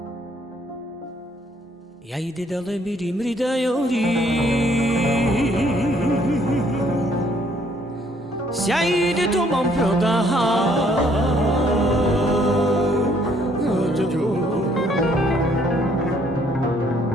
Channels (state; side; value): normal; both; correlation 0.65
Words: Jajde dale biri mridajori Sjajde to mam prodaha